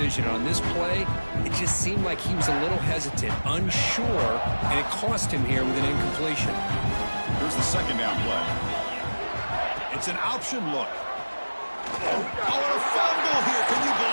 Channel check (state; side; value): inverted; both; correlation -1.00